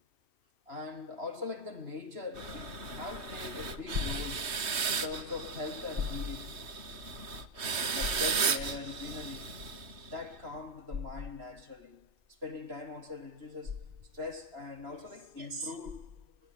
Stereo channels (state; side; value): late; left; 2.6 ms